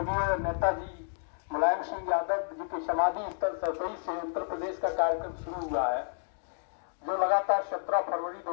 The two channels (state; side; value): silent; right; digital silence